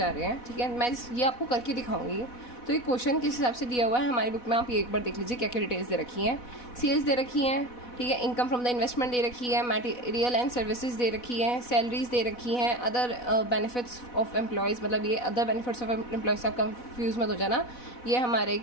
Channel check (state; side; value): late; right; 4.1 ms